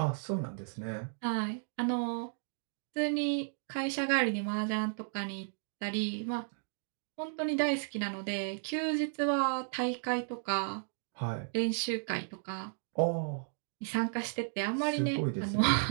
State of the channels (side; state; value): left; silent; digital silence